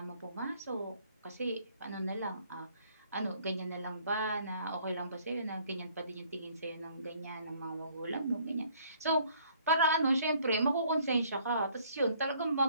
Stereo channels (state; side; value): inverted; both; correlation -0.61